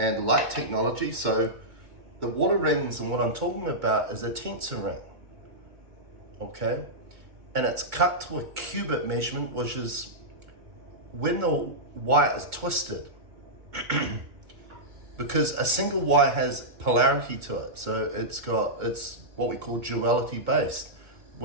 technology. So the water rings and what I'm talking about is a tensor ring, okay? And it's cut to a cubit measurement, which is when the wire is twisted. Because a single wire has polarity to it, so it's what we call duality based.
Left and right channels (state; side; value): late; left; 2.2 ms